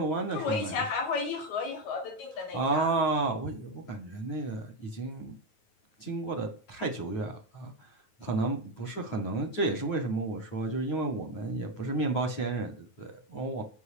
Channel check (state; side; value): late; right; 9.4 ms